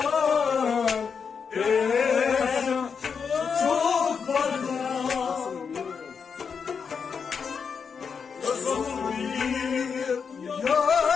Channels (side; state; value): right; quieter; 6.1 dB